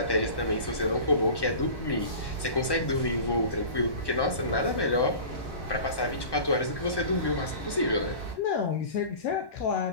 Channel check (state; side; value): late; right; 1.1 ms